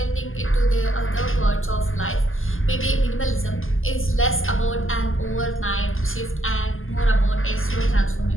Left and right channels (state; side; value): late; right; 0.59 ms